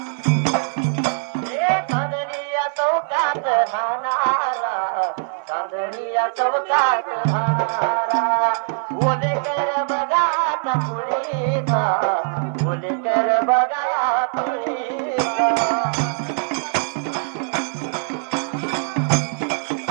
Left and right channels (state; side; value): silent; left; 58 dB below the other